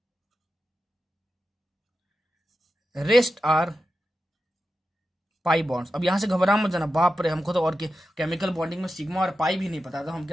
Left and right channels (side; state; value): both; normal; correlation 0.91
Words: rest are pi bonds. अब यहाँ से घबरा मत जाना, बाप रे हमको तो और केमिकल बॉन्डिंग में सिग्मा और पाई भी नहीं पता था, हम